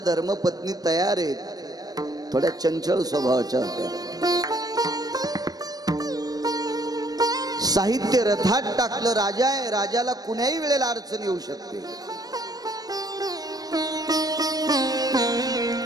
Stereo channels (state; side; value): late; left; 0.19 ms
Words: धर्मपत्नी तयार आहेत। थोड्या चंचल स्वभावाच्या होत्या। साहित्य रथात टाकलं, राजा आहे, राजाला कुण्याही वेळेला अडचण येऊ शकते।